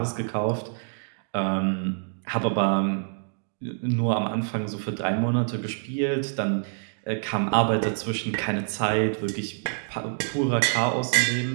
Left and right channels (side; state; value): left; silent; digital silence